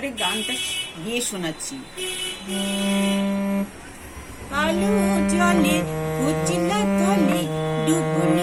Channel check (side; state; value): both; identical; correlation 1.00